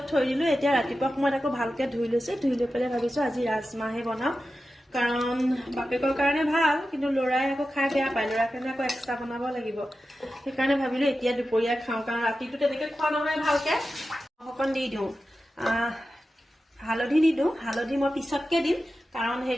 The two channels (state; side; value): normal; both; correlation 0.92